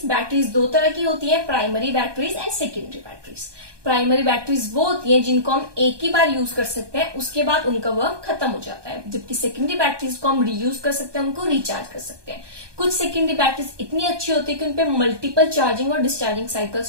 बैटरीज 2 तरह की होती है, primary batteries and secondary batteries. Primary batteries वो होती हैं जिनको हम एक ही बार यूज कर सकते हैं, उसके बाद उनका वर्क खत्म हो जाता है, जबकि सेकेंडरी बैटरीज को हम रीयूज कर सकते हैं, उनको रिचार्ज कर सकते हैं। कुछ सेकेंडरी बैटरीज इतनी अच्छी होती है कि उनपे मल्टीपल चार्जिंग और डिस्चार्जिंग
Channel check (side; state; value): left; late; 1.2 ms